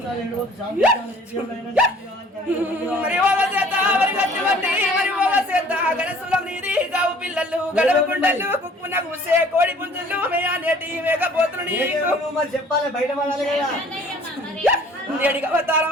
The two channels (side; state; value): both; normal; correlation 0.53